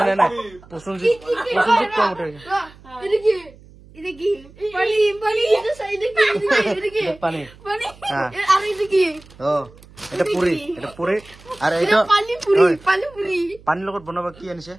নাই প্ৰসঞ্জিত কম উঠে পানীৰ লগত বনাবা কি আনিছে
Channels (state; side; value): noise; right; hum, 23 dB below the sound